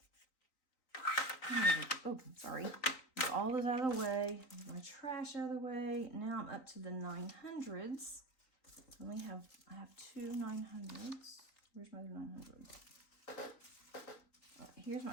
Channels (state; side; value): late; right; 3.9 ms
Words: Oh, sorry. All this out of the way, my trash out of the way. Now I'm up to the 900s. I have two 900s. Where's my other 900? Oh, here's